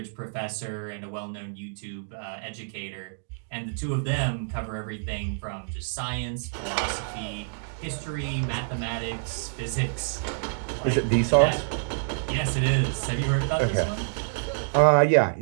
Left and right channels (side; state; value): left; silent; digital silence